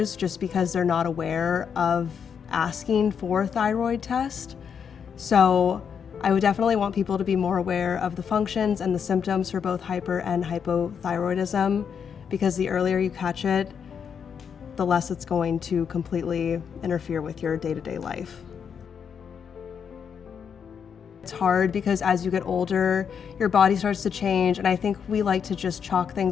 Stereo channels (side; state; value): right; quieter; 7.1 dB